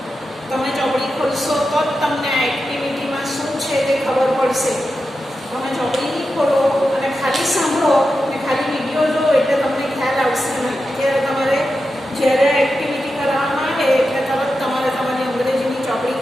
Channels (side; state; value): both; normal; correlation 0.90